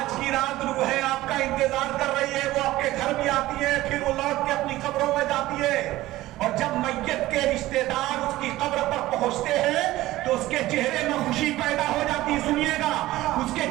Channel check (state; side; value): quieter; left; 16.7 dB